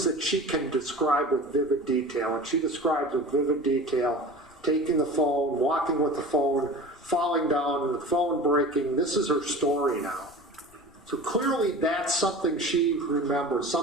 that she can describe with vivid detail. And she describes with vivid detail taking the phone, walking with the phone, falling down, the phone breaking. This is her story now. So clearly that's something she remembers,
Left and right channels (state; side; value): noise; left; rumble, 30 dB below the sound